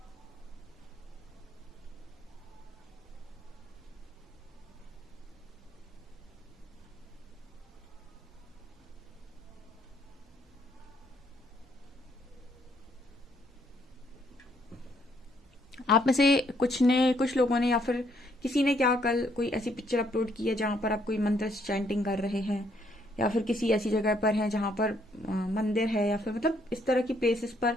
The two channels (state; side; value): normal; both; correlation 0.70